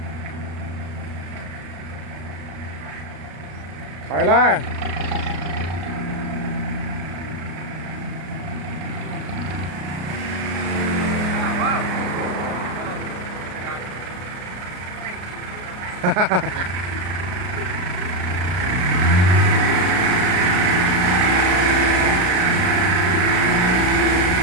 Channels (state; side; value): late; left; 33 ms